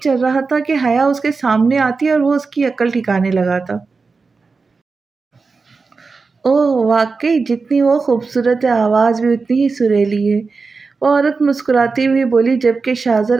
چل رہا تھا کہ حیا اس کے سامنے آتی اور وہ اس کی عقل ٹھکانے لگاتا۔ اوہ واقعی، جتنی وہ خوبصورت ہے، آواز بھی اتنی ہی سریلی ہے، وہ عورت مسکراتی ہوئی بولی، جبکہ شاہزر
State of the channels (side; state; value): left; quieter; 4.4 dB